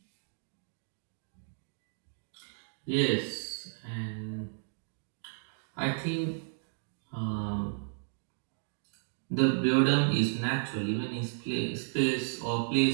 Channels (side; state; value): left; silent; digital silence